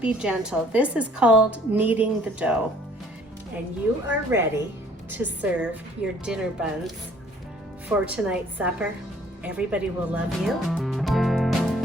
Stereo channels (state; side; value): normal; both; correlation 0.58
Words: gentle. This is called kneading the dough. And you are ready to serve your dinner buns for tonight's supper. Everybody will love you.